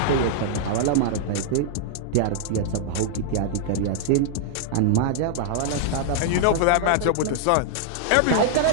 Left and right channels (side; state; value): both; different; correlation -0.01